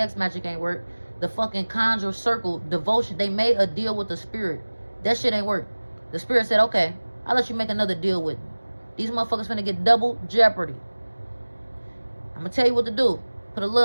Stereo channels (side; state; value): both; inverted; correlation -1.00